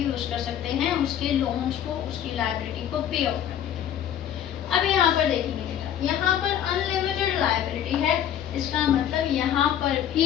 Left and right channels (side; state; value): right; quieter; 10.2 dB